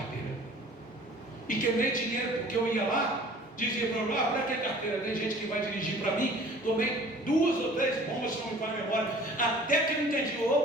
E queimei dinheiro, porque eu ia lá, dizia para lá: para que carteira? Tem gente que vai dirigir para mim. Tomei 2 ou 3 bombas, se não me falha a memória, até que eu entendi:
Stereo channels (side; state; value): both; normal; correlation 0.49